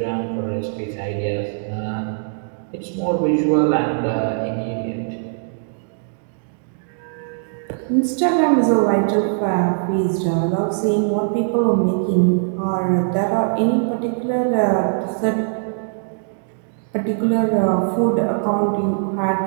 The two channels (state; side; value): silent; left; digital silence